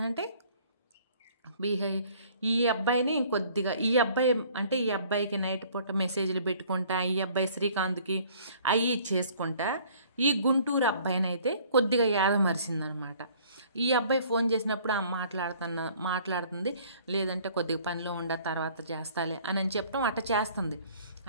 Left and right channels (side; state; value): both; inverted; correlation -0.56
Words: ఈ అబ్బాయిని ఇంకొద్దిగా ఈ అబ్బాయి అంటే ఈ అబ్బాయికి నైట్ పూట మెసేజ్లు పెట్టుకుంటా, ఈ అబ్బాయి శ్రీకాంత్కి అవి చేసుకుంటా ఈ గుంటూరు అబ్బాయిని అయితే కొద్దిగా యాదమరిసిందనమాట. ఈ అబ్బాయి ఫోన్ చేసినప్పుడు మాట్లాడుతుంది, లేదంటే కొద్దిగా పనిలో ఉండ తర్వాత చేస్తాలే అని చెప్పడం అట్ట చేస్తుంది.